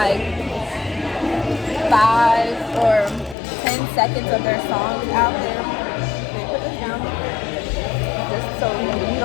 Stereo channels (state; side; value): drops out; right; at 3.4 s